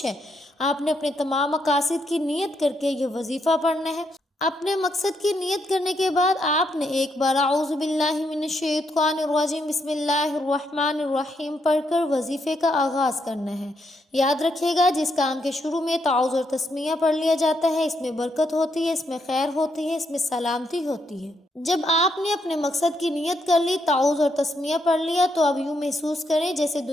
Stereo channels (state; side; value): normal; both; correlation 0.78